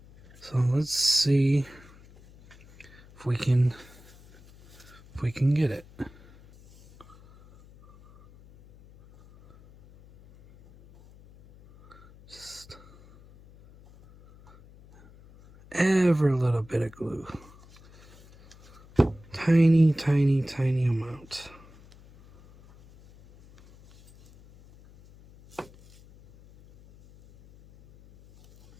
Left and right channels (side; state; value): left; noise; hum, 24 dB below the sound